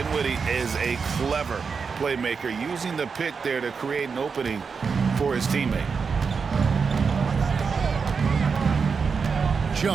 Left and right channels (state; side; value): quieter; left; 5.5 dB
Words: is a clever playmaker, using the pick there to create an opening for his teammate.